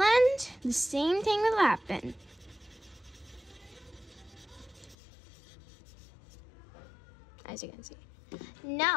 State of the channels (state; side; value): drops out; right; at 5.0 s